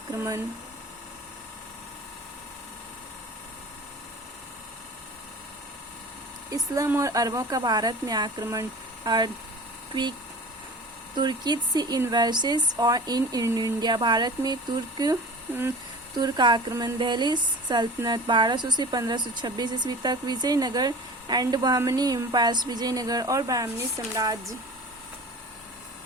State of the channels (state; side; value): normal; both; correlation 0.39